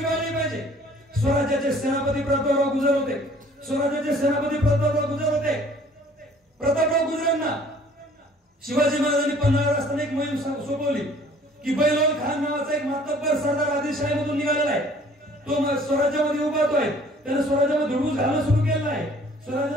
पाहिजे. स्वराज्याचे सेनापती प्रतापराव गुजर होते. स्वराज्याचे सेनापती प्रतापराव गुजर होते. प्रतापराव गुजरांना शिवाजी महाराजांनी पन्हाळ्यावर असताना एक मोहीम सोपवली की बैलोल खान नावाचा एक मातब्बर सरदार आदिलशाहीमधून निघालेला आहे. तो स्वराज्यामध्ये उभारतोय. त्याने स्वराज्यामध्ये धुडगूस घालणं सुरू केलं आहे.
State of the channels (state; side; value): normal; both; correlation 0.54